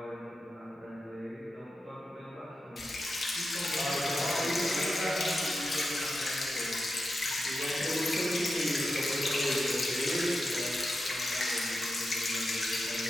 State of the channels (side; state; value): both; normal; correlation 0.89